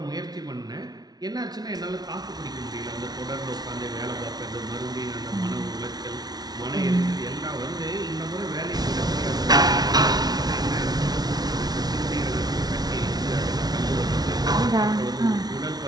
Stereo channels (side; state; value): left; late; 0.19 ms